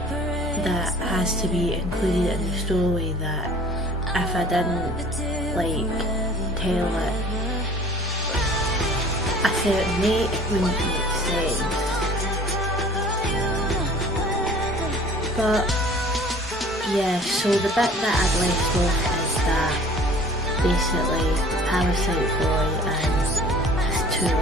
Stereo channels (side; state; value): both; normal; correlation 0.49